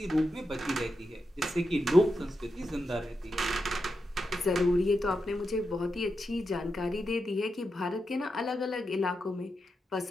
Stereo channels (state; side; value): normal; both; correlation 0.87